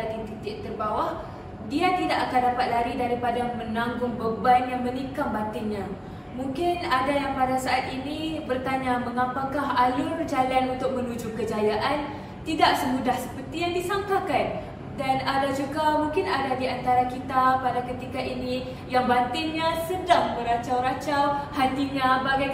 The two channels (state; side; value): identical; both; correlation 1.00